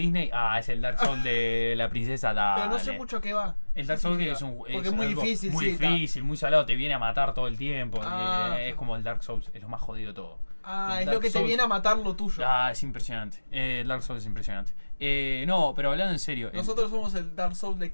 es el Dark Souls de la princesa, dale. Pero no sé mucho qué va. El Dark Souls que es un Porque es muy algo difícil, muy sí, está. difícil, muy salado, te viene a matar todo el tiempo. Es Ah. como el Dark Souls, es lo más jodido de todo. Ah, El es Dark lo que te Souls- viene a matar lo tuyo. Es impresionante. El Dark Souls es impresionante. No, pero hablando en serio. Nosotros somos el Dark Souls de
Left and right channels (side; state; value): both; inverted; correlation -1.00